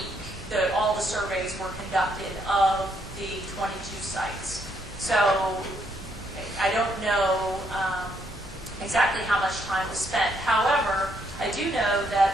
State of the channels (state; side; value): normal; both; correlation 0.73